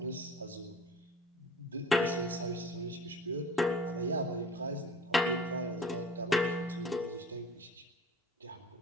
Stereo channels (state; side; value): normal; both; correlation 0.45